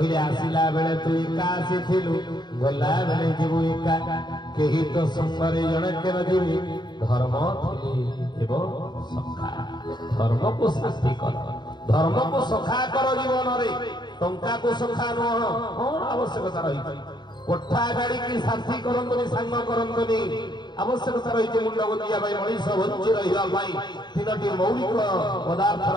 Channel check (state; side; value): late; right; 0.21 ms